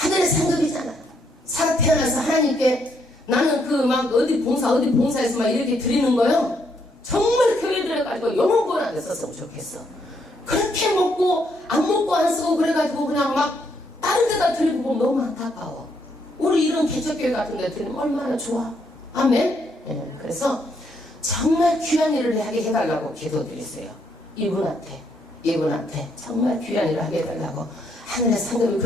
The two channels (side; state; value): both; normal; correlation 0.74